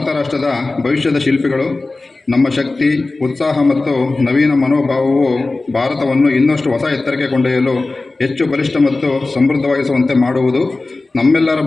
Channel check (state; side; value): quieter; right; 3.3 dB